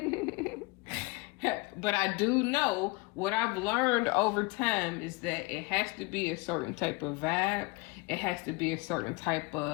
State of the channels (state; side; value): quieter; right; 25.9 dB